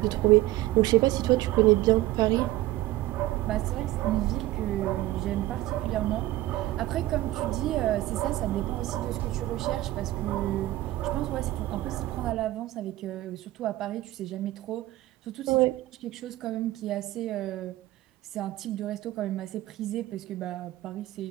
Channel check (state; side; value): quieter; left; 16.5 dB